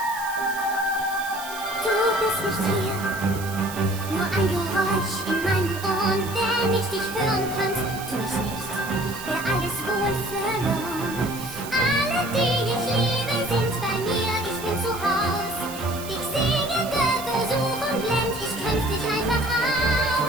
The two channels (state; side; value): noise; right; hiss, 12 dB below the sound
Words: Du bist nicht hier, nur ein Geräusch in meinen Ohren. Wenn ich dich hören könnte, tu ich nicht, wär alles wohl verloren. Alle, die ich liebe, sind bei mir, ich bin zu Haus. Dich singende Versuchung blend, ich kämpf dich einfach